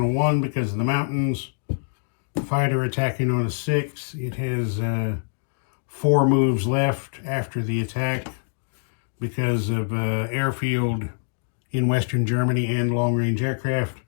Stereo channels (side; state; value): right; silent; digital silence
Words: a 1 because of the mountains. Fighter attacking on a 6. It has 4 moves left after the attack because of airfield in Western Germany and long-range aircraft.